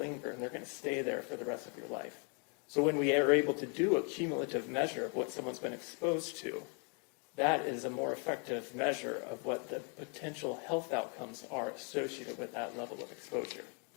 and they're going to stay there for the rest of your life. So when we are able to do a cumulative measure of what someone's been exposed to, that is a more effective measure of what the potential health outcomes are associated with that level of exposure.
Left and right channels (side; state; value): right; quieter; 36.7 dB